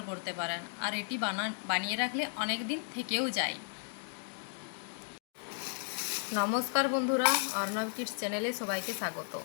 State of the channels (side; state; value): right; silent; digital silence